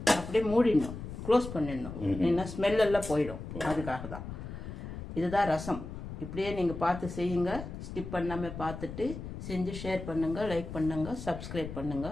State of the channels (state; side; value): noise; left; rumble, 9 dB below the sound